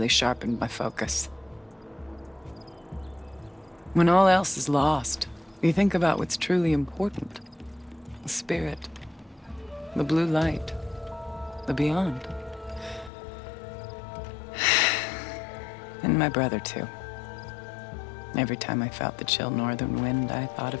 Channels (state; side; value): drops out; right; at 13.1 s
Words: sharpened my focus. When all else is lost, you think about what's truly important. The spirit. The blue light. The beyond. And my brother, too. Every time I felt the chill northern wind, I thought